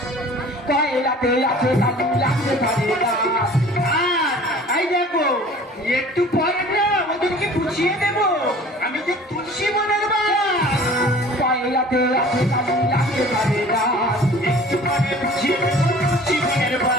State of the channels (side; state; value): both; normal; correlation 0.46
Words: পয়লাতে আছে কালি লাগতে পারে না এই দেখো একটু পরে না ওদেরকে বুঝিয়ে দেবো আমি যে তুলসী বনের বাস। পয়লাতে আছে কালি লাগতে পারে না একটু পরে বুঝিয়ে দেবো তুলসী বনের